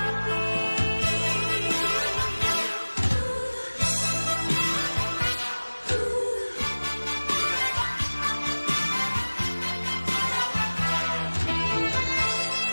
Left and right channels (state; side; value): inverted; both; correlation -1.00